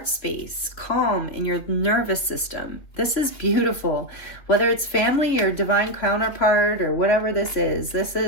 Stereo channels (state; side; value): late; right; 3.0 ms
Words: space, calm in your nervous system. This is beautiful. Whether it's family or divine counterpart or whatever this